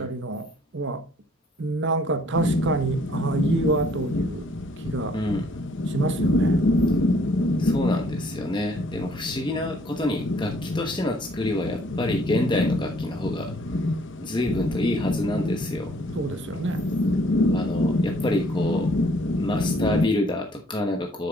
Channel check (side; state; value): both; normal; correlation 0.62